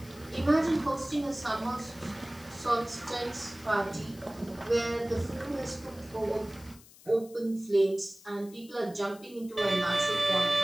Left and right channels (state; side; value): noise; left; hiss, 22 dB below the sound